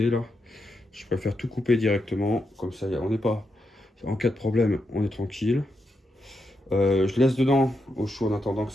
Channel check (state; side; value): normal; both; correlation 0.84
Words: là, je préfère tout couper directement. Comme ça, on n'est pas... En cas de problème, on est tranquille. Je laisse dedans au chaud en attendant que